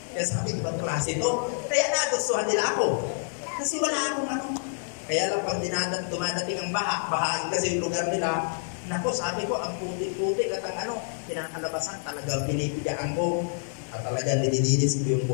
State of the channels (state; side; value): silent; right; digital silence